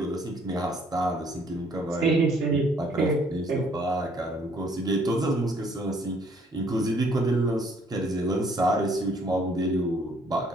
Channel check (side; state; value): both; normal; correlation 0.63